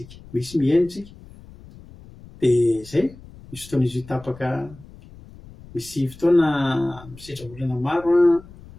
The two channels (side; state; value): left; noise; rumble, 20 dB below the sound